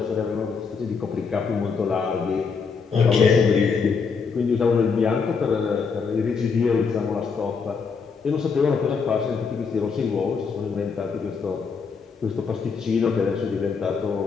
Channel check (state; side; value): quieter; right; 5.4 dB